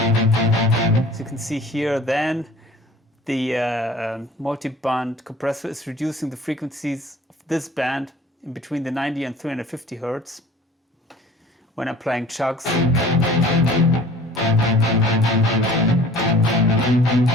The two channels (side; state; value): both; normal; correlation 0.48